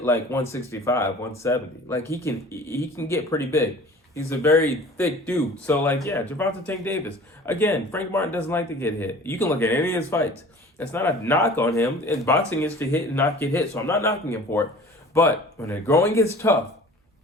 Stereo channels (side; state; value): both; normal; correlation 0.44